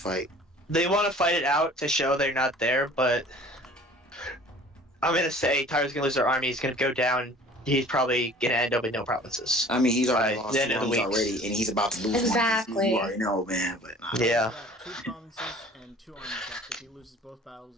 fight. They want to fight it out to show they're not there, but I'm gonna say Tyra's gonna lose their army. He's gonna go down. He's probably gonna end up with no provinces. I mean, he's already Right, lost the 2 end of the armies week. already, and he's about to lose Exactly. one. You already know, man. But Yeah. He's got 2 provinces and 2 armies left. If he loses both battles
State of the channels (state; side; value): normal; both; correlation 0.48